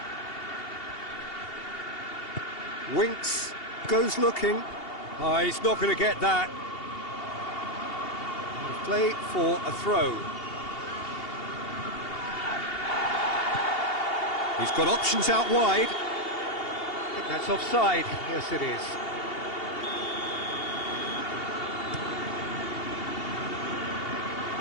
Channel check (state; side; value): late; right; 2.8 ms